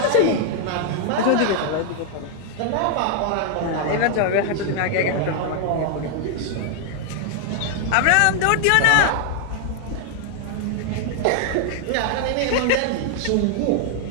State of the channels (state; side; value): different; both; correlation 0.00